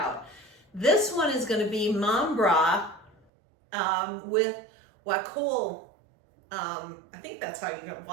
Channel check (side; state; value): left; drops out; at 3.2 s